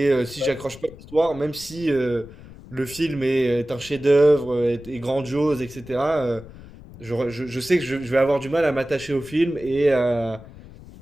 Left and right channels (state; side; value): noise; left; rumble, 18 dB below the sound